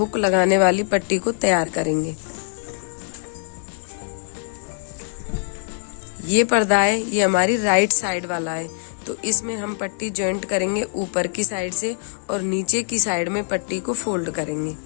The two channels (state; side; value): silent; right; digital silence